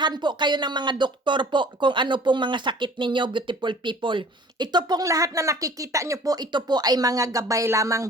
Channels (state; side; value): normal; both; correlation 0.49